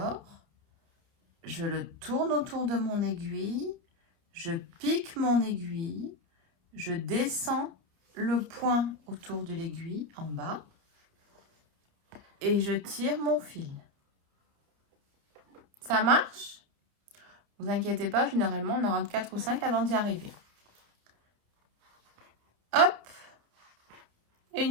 Je le tourne autour de mon aiguille. Je pique mon aiguille. Je descends le point autour de l'aiguille en bas. Et je tire mon fil. Ça marche? Ne vous inquiétez pas, généralement, on en rentre 4 ou 5 avant d'y arriver. Hop! Et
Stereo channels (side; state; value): left; late; 29 ms